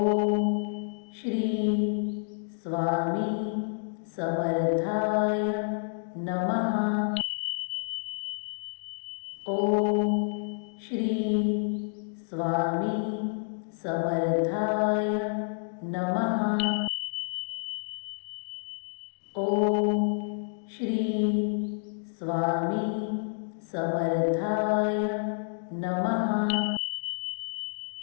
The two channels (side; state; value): right; silent; digital silence